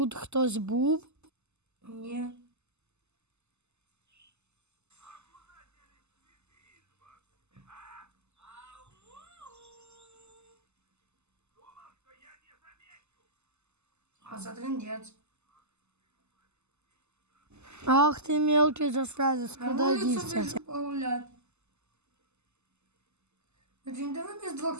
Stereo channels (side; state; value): left; late; 0.82 ms